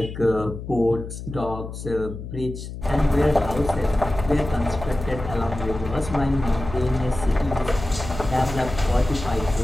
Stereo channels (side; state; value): left; noise; hum, 9 dB below the sound